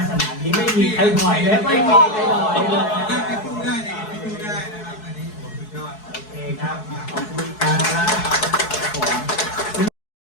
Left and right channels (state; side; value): late; right; 4.7 ms